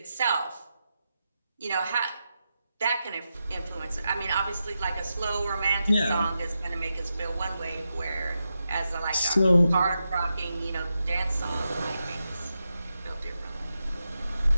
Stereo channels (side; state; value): both; inverted; correlation -0.88